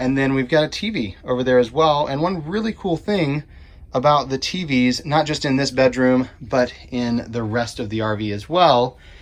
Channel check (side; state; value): both; identical; correlation 1.00